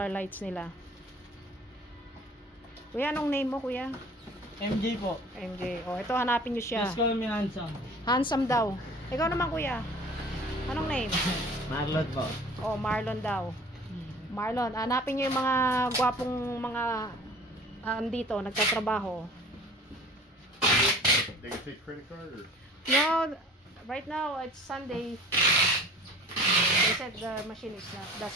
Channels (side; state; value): both; normal; correlation 0.45